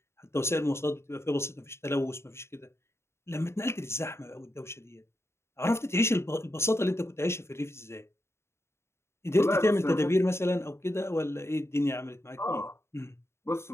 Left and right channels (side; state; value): right; late; 0.13 ms